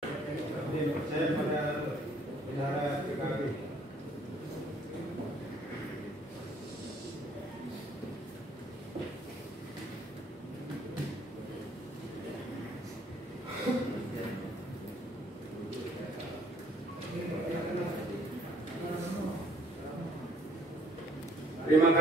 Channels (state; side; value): normal; both; correlation 0.61